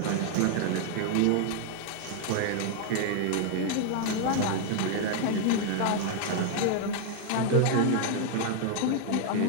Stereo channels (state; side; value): different; both; correlation 0.00